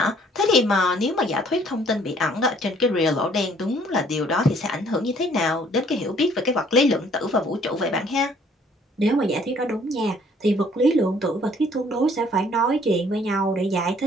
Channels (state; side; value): normal; both; correlation 0.60